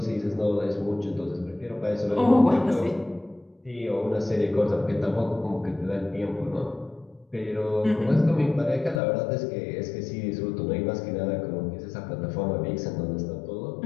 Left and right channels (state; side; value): drops out; right; at 9.0 s